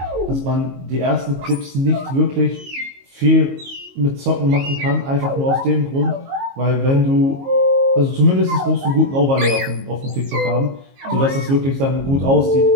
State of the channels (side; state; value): left; late; 22 ms